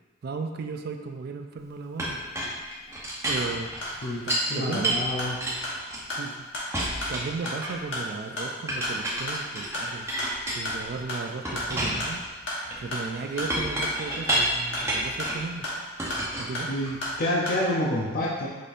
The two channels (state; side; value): normal; both; correlation 0.17